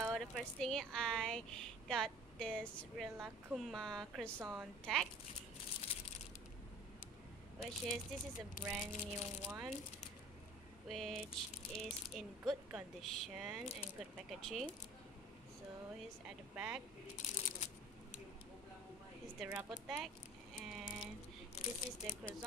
the first thing I got this Rilakkuma croissant tag, which is this is a brand new one, which is in good condition and good packaging. So here's at the back. This is the rubber tag, and this is the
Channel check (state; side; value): normal; both; correlation 0.45